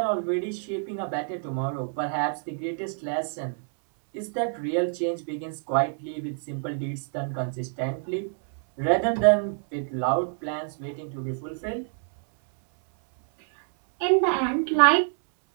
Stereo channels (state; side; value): silent; left; 60 dB below the other